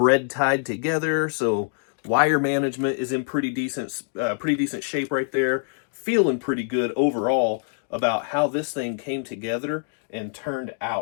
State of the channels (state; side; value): silent; right; 62 dB below the other